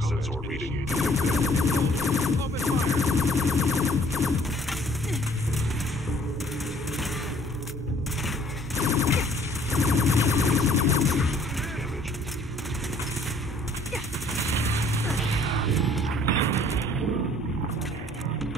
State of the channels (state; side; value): normal; both; correlation 0.58